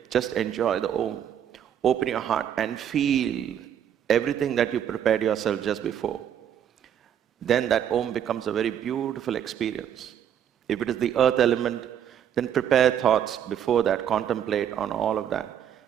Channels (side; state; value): left; quieter; 9.5 dB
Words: just enjoy the Om. Open your heart and feel everything that you prepared yourself just before. Then that Om becomes a very beautiful experience. If it is the earth element, then prepare thoughts before that, contemplate on all of that.